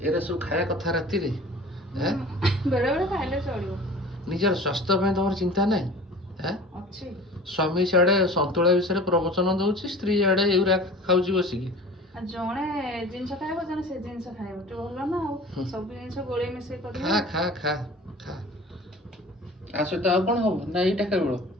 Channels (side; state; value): both; normal; correlation 0.42